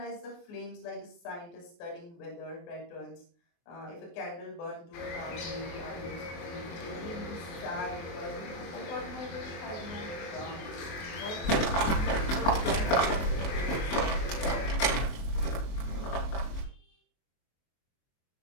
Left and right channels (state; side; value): late; right; 23 ms